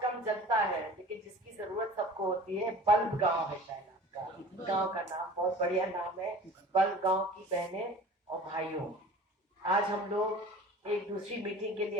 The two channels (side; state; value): both; normal; correlation 0.42